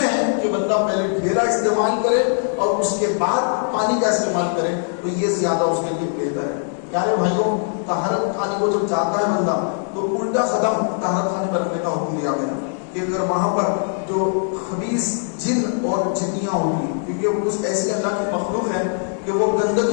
ہے کہ بندہ پہلے ڈھیلا استعمال کرے اور اس کے بعد پانی کا استعمال کرے، تو یہ زیادہ اس کے لیے بہتر ہے۔ پیارے بھائیوں طہارت خانے کو جب جاتا ہے بندہ تو الٹا قدم طہارت خانے پر رکھنے کا حکم دیا گیا کہ اگر وہاں پر جو خبیث جن اور جنیاں ہوگی، کیونکہ وہ کچھ ایسی اللہ کی مخلوق ہے کہ وہ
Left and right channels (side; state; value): right; silent; 63 dB below the other